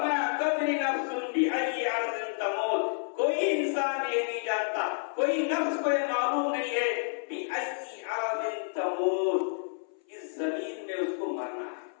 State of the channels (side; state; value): right; silent; 58 dB below the other